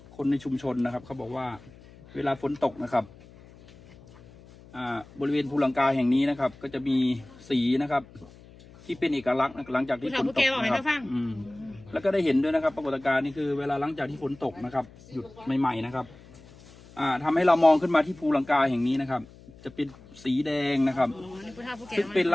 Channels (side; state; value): left; noise; hum, 22 dB below the sound